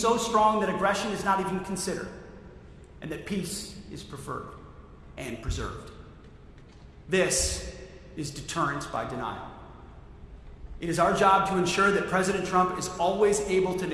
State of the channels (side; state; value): both; identical; correlation 1.00